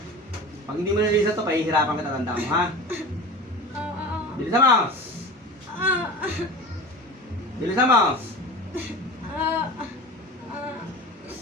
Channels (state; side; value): normal; both; correlation 0.33